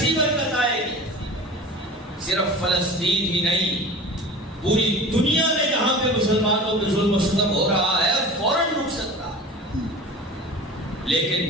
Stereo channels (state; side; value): normal; both; correlation 0.36